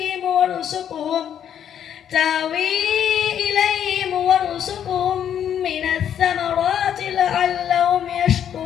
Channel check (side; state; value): right; quieter; 9.4 dB